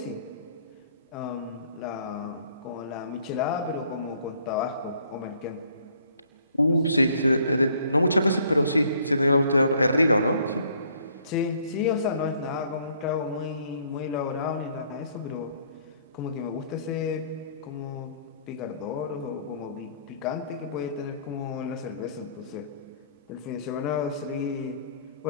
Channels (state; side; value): inverted; both; correlation -0.60